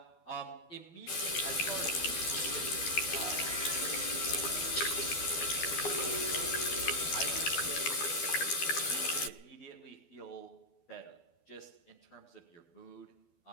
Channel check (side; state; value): right; late; 12 ms